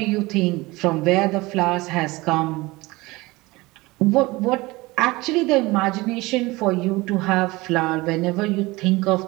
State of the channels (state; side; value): quieter; left; 21.7 dB